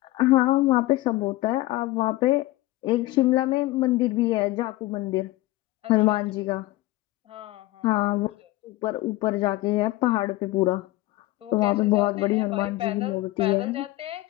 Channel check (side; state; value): right; quieter; 18.1 dB